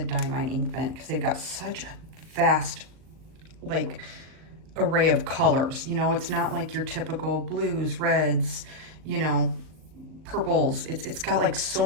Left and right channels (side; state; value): left; late; 39 ms